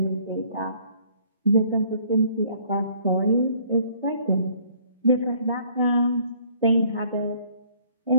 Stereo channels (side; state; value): both; inverted; correlation -0.60